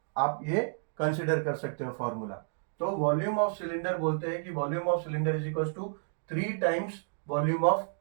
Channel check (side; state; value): left; silent; digital silence